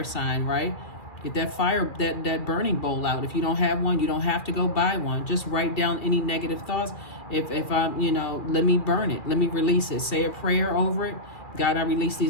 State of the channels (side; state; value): right; late; 2.4 ms